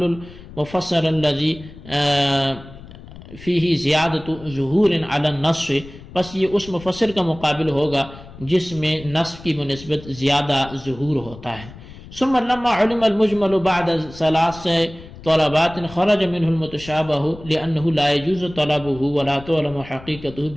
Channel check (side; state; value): left; noise; rumble, 17 dB below the sound